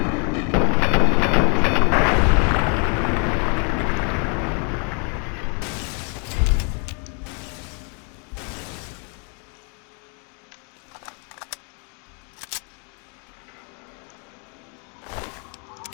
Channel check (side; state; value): right; quieter; 38.1 dB